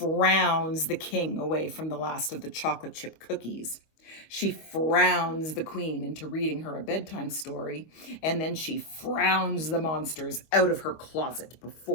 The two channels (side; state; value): right; late; 25 ms